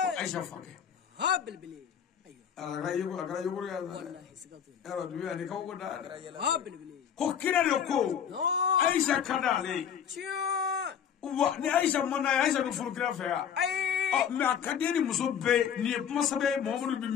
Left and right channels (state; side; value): quieter; right; 8.3 dB